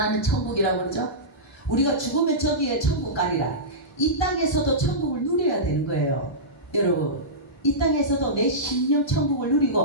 천국이라고 그러죠. 우리가 죽으면 저기에 천국 가리라. 이 땅에서도 천국을 누려야 되는 거예요. 여러분, 이 땅에서도 내 심령 천국을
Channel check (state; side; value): normal; both; correlation -0.16